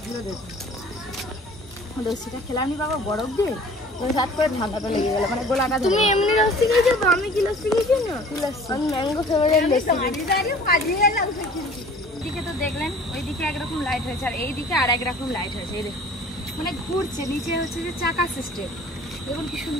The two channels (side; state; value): both; normal; correlation 0.48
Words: দেখুন। লস্যিটা খেলাম নি বাবা বরফ দিয়ে, ওই হাত করে ঠান্ডাটা লেগে গেল, মানে গোলাটা। তুমি এমনি লস্যি খেয়েছো তো, আমি কি লস্যি খেয়েছি না? কি লস্যি? আমি ম্যাঙ্গো ফ্লেভারের লস্যি। এদিকে তো দেখলেন ওইদিকে একরকম লাইট হয়েছে, আর এইদিকে আর একরকম লাইট হয়েছে। এই দেখুন মানে ঘুরছে, নিচে হচ্ছে যে চাকা সিস্টেম, দেখুন কি